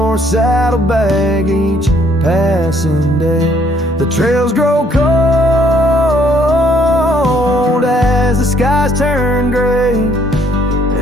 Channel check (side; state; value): both; normal; correlation 0.65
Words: saddlebag each passing day. The trails grow cold as the skies turn gray,